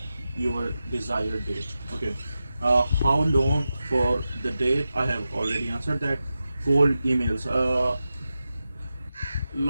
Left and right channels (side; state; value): both; inverted; correlation -0.92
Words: your desired date. Okay. How long for the date? I have already answered that. Cold emails. A